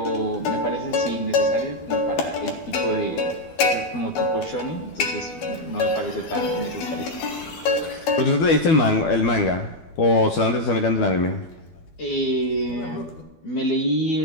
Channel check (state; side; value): late; right; 12 ms